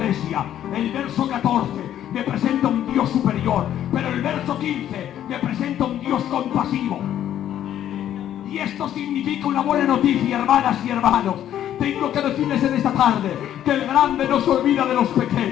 el verso 14 me presenta un Dios superior, pero el verso 15 me presenta un Dios compasivo. Y esto significa una buena noticia, hermanas y hermanos. Tengo que decirles en esta tarde que el grande no se olvida de los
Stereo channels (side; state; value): right; quieter; 11.1 dB